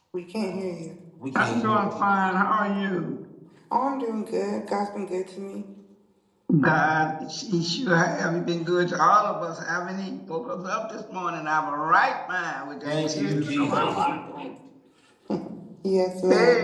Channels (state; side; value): identical; both; correlation 1.00